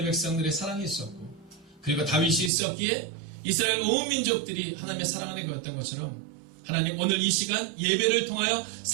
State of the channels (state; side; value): drops out; left; at 2.5 s